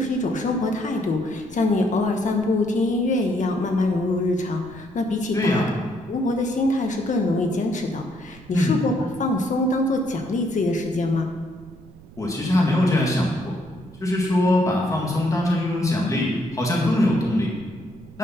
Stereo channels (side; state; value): right; noise; rumble, 20 dB below the sound